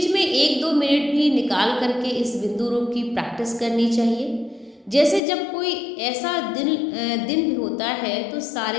में 1-2 मिनट भी निकाल करके इस बिंदु रूप की प्रैक्टिस करनी चाहिए। जैसे जब कोई ऐसा दिन होता है तो सारे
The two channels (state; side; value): drops out; right; at 5.2 s